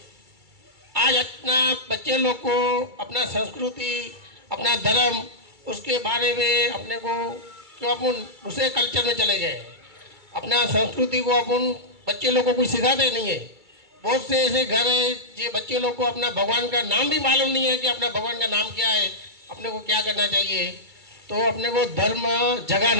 आज अपना बच्चे लोग को अपना संस्कृति, अपना धर्म, उसके बारे में अपने को क्यों अपन दूसरे कल्चर में चले गए. अपना संस्कृति को अपन बच्चे लोग को कुछ सिखाते नहीं है. बहुत से ऐसे घर है जो बच्चे लोग को अपना भगवान का नाम भी मालूम नहीं है कि अपना भगवान का नाम क्या है, अपने को क्या करना चाहिए. तो अपने को धर्म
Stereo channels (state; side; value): late; left; 2.3 ms